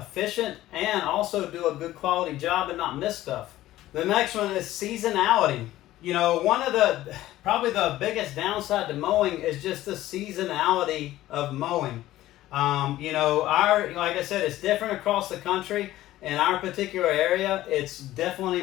and also do a good quality job and not miss stuff. The next one is seasonality. One of probably the biggest downside to mowing is just the seasonality of mowing. Like I said, it's different across the country. In our particular area, it's definitely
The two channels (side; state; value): right; quieter; 15.1 dB